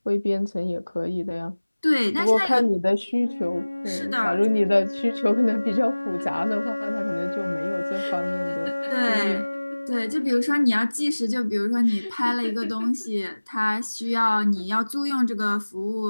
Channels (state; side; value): inverted; both; correlation -1.00